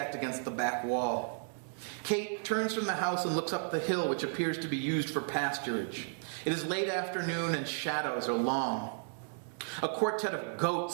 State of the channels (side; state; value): left; silent; 55 dB below the other